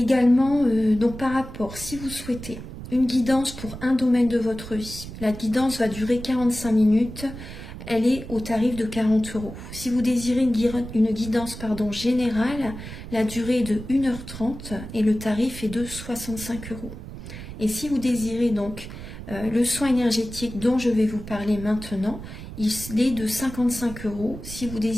donc par rapport, si vous souhaitez une guidance pour un domaine de votre vie, la guidance va durer 45 minutes. Elle est au tarif de 40 €. Si vous désirez une guidance générale, la durée est de 1h30 et le tarif est de 65 €. Et si vous désirez donc le soin énergétique dont je vais vous parler maintenant, il est de 55 €. Si vous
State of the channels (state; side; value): noise; right; rumble, 11 dB below the sound